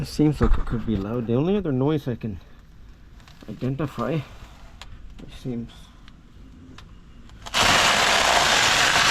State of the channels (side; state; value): both; identical; correlation 1.00